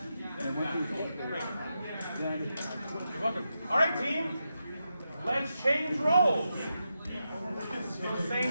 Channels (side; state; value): both; inverted; correlation -0.87